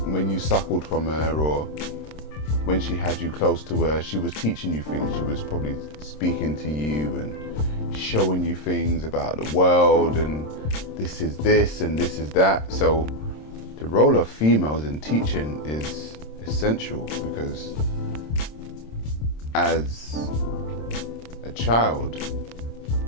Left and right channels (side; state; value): right; late; 26 ms